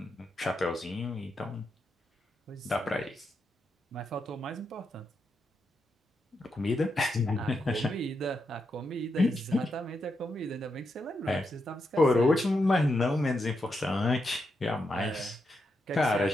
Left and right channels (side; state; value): both; normal; correlation 0.84